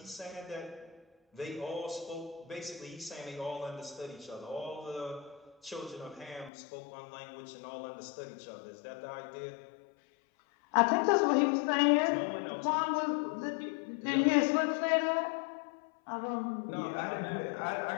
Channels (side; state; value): right; drops out; at 6.5 s